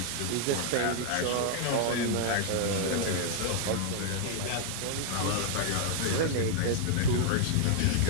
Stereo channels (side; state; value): both; different; correlation 0.00